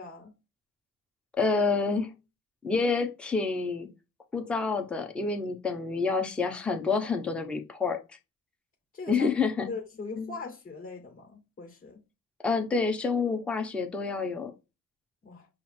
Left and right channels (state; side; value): quieter; right; 4.1 dB